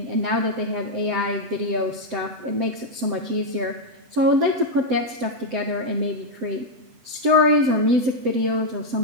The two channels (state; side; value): late; left; 7.9 ms